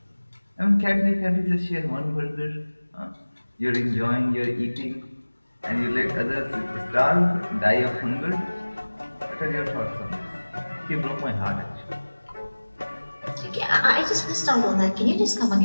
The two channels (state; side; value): inverted; both; correlation -1.00